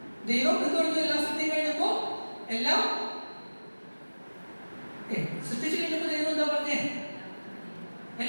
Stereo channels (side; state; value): both; inverted; correlation -1.00